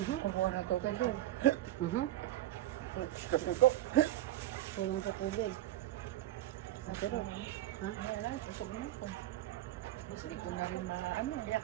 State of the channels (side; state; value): left; quieter; 14.1 dB